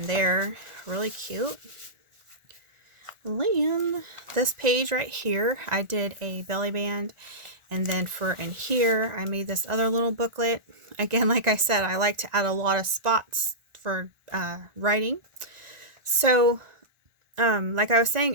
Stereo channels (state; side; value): late; left; 1.4 ms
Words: there. Really cute. Then this page right here, I did a belly band, and then for in here I made this other little booklet. Again, like I said, I like to add a lot of spots for writing. So like I was